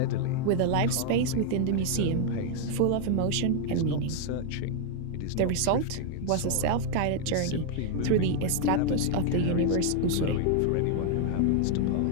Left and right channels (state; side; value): different; both; correlation 0.00